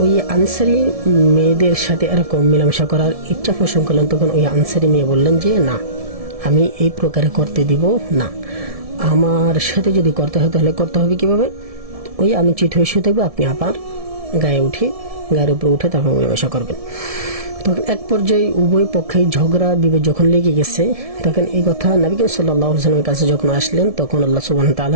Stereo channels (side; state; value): left; late; 1.7 ms